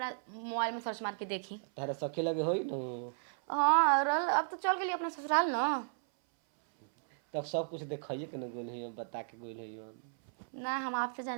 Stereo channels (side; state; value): left; silent; 55 dB below the other